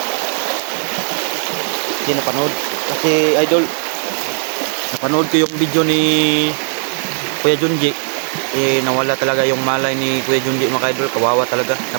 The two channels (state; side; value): silent; left; 59 dB below the other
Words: Kasi napanood ko yung video ni Kuya Junji. Nawala talaga yung malay ni Kuya Junji mga idol. Kawawa talaga.